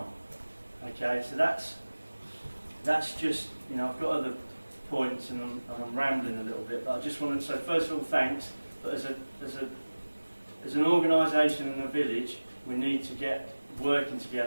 Okay, so that's just, I've got other points and I'm rambling a little bit, but I just wanted to say first of all thanks. But as an organisation in the village, we need to get working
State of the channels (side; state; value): both; inverted; correlation -1.00